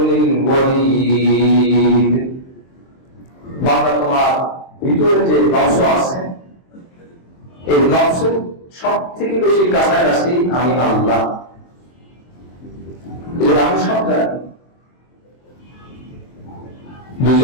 الْوَرِيدِ। বান্দা তোমার ভিতরে যে নফস আছে এই নফসের সব থেকে বেশি কাছাকাছি আমি আল্লাহ। আমি সব জানি।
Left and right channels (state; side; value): late; right; 23 ms